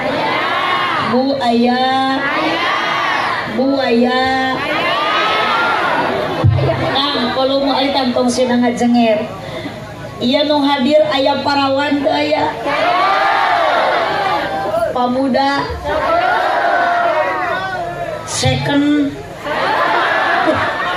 Bu ayah, Bu ayah. Kang, kalau mau alitan tong sinang ngajenger. Iya nung hadir ayah parawan teu aya. Pamuda. Second.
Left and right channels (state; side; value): identical; both; correlation 1.00